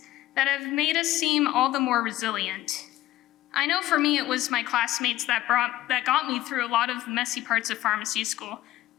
that have made us seem all the more resilient. I know for me it was my classmates that got me through a lot of the messy parts of pharmacy school,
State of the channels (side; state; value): right; quieter; 15.0 dB